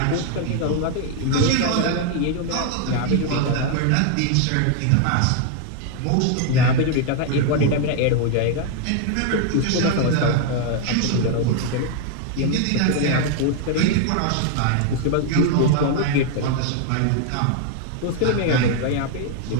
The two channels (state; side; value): different; both; correlation 0.00